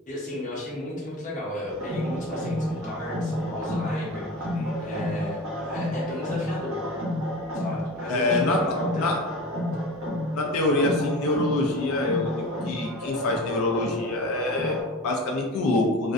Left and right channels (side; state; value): both; normal; correlation 0.32